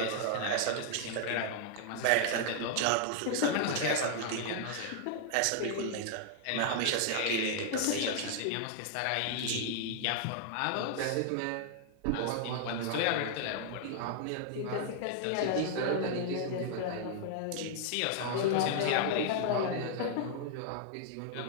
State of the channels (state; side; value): different; both; correlation 0.00